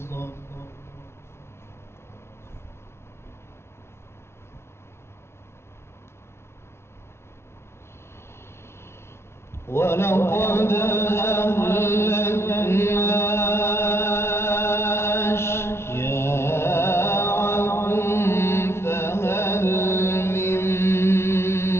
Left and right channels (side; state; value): right; late; 0.12 ms